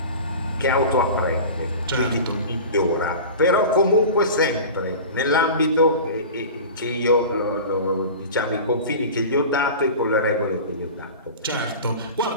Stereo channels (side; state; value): both; inverted; correlation -0.34